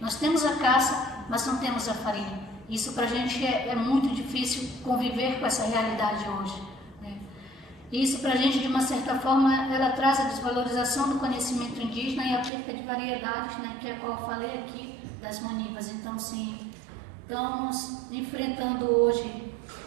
nós temos a caça, mas não temos a farinha. Isso para a gente é muito difícil conviver com essa realidade hoje, né? Isso para a gente, de uma certa forma, ela traz a desvalorização do conhecimento indígena e a perca de variedades, né, que é a qual eu falei aqui, das manivas. Então, sim, estamos enfrentando hoje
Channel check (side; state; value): left; drops out; at 12.5 s